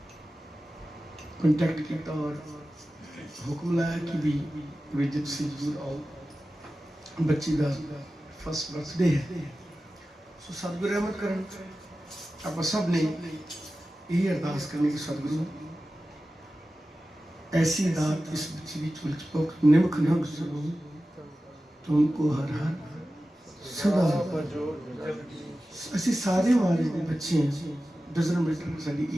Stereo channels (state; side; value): normal; both; correlation 0.95